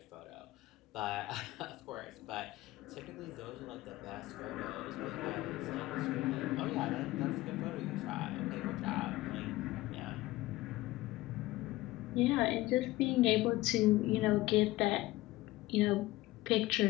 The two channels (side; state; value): right; quieter; 18.2 dB